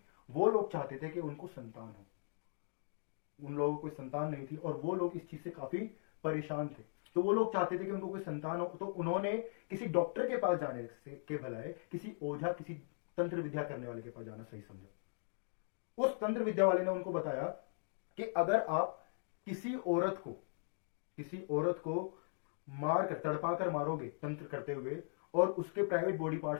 वो लोग चाहते थे कि उनको संतान हो। उन लोगों को कोई संतान नहीं थी और वो लोग इस चीज से काफी परेशान थे। तो वो लोग चाहते थे कि उनको कोई संतान हो, तो उन्होंने किसी डॉक्टर के पास जाने से के भलाए किसी ओझा, किसी तंत्र विद्या करने वाले के पास जाना सही समझा। उस तंत्र विद्या वाले ने उनको बताया कि अगर आप किसी औरत को मार कर, तड़पा कर मारोगे तंत्र करते हुए, और उसके प्राइवेट बॉडी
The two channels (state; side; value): silent; right; digital silence